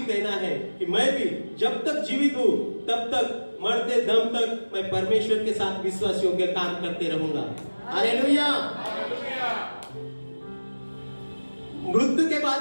कहना है कि मैं भी जब तक जीवित हूं तब तक, मरते दम तक मैं परमेश्वर के साथ विश्वासियों के काम करते रहूंगा। हालेलुया। मृत्यु के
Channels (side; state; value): both; inverted; correlation -1.00